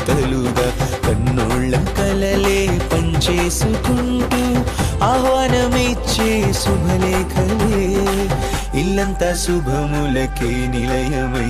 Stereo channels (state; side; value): identical; both; correlation 1.00